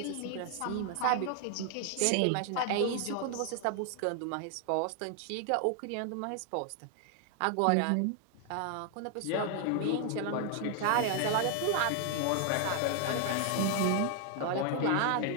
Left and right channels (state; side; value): different; both; correlation 0.00